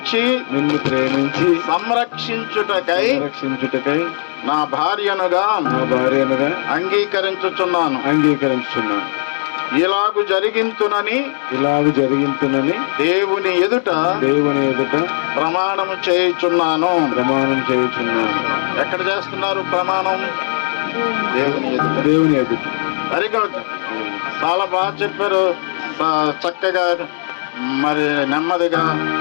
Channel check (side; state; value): right; silent; 68 dB below the other